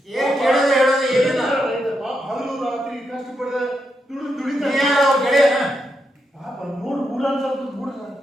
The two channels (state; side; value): normal; both; correlation 0.83